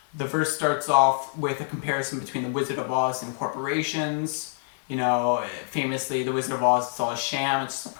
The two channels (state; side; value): silent; right; digital silence